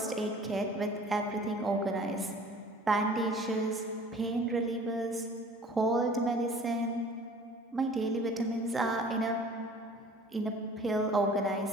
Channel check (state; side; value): normal; both; correlation 0.48